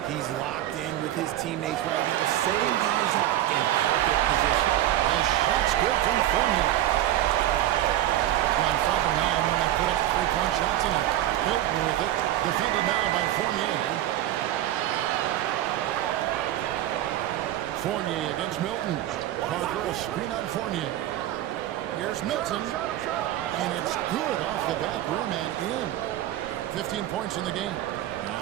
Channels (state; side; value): quieter; left; 13.3 dB